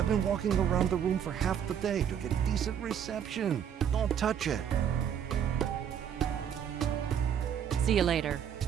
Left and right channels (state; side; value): quieter; left; 8.8 dB